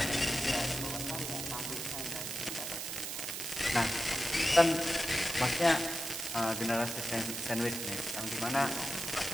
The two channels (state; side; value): noise; right; hiss, 4 dB below the sound